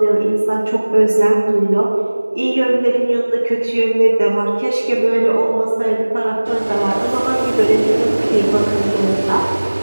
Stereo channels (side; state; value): both; inverted; correlation -1.00